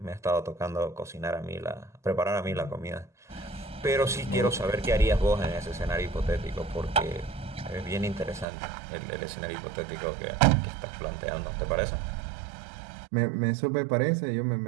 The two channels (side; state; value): left; drops out; at 8.5 s